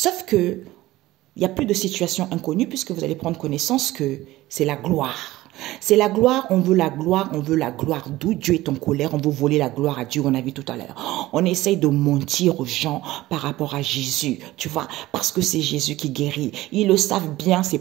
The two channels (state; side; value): quieter; left; 17.1 dB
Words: que, il n'y a plus de situation inconnue puisque vous allez prendre connaissance que c'est la gloire. C'est la gloire, on veut la gloire, on veut la gloire. D'où Dieu est en colère, on veut voler la gloire à Dieu, on a vu tout à l'heure. On essaye de mentir aux gens par rapport à Jésus, tu vois, parce que c'est Jésus qui guérit. Ils le savent bien, ces